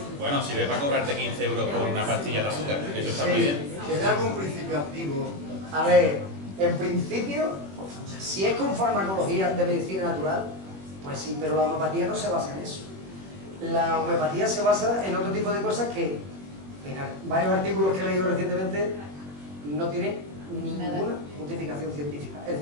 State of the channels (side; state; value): left; late; 21 ms